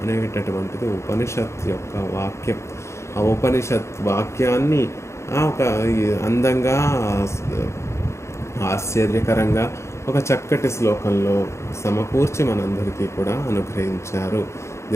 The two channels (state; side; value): late; right; 0.13 ms